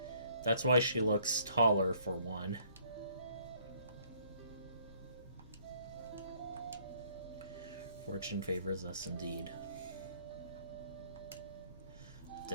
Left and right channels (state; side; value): inverted; both; correlation -0.63